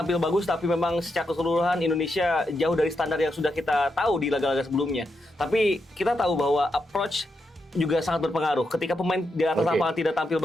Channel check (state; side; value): normal; both; correlation 0.84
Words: bagus, tapi memang secara keseluruhan Indonesia jauh dari standar yang sudah kita tahu di laga-laga sebelumnya. Tapi kita tahu bahwa approach juga sangat berpengaruh. Ketika pemain di atas Oke. lapangan tidak tampil